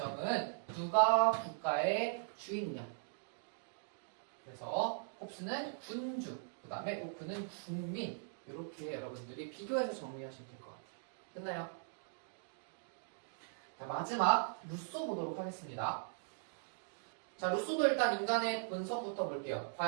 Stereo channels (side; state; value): left; silent; digital silence